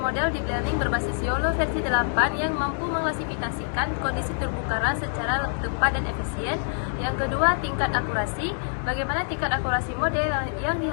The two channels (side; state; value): right; silent; digital silence